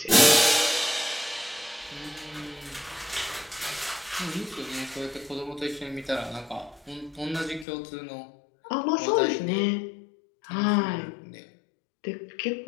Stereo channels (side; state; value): right; drops out; at 7.7 s